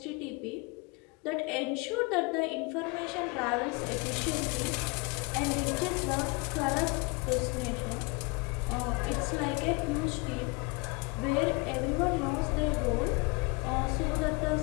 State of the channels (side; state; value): right; quieter; 28.6 dB